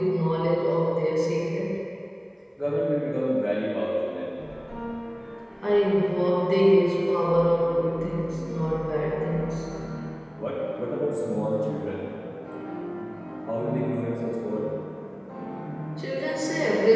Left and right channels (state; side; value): identical; both; correlation 1.00